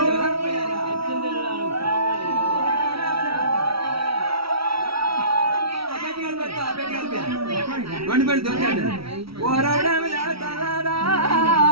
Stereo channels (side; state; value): left; late; 0.75 ms